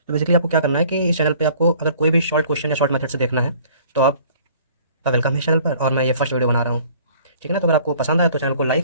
बेसिकली आपको क्या करना है कि इस चैनल पे आपको अगर कोई भी शॉर्ट क्वेश्चन या शॉर्ट मेथड से देखना है तो आपका वेलकम है इस चैनल पर। और मैं ये फर्स्ट वीडियो बना रहा हूँ, ठीक है ना। तो अगर आपको पसंद आए तो चैनल को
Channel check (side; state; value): both; inverted; correlation -0.53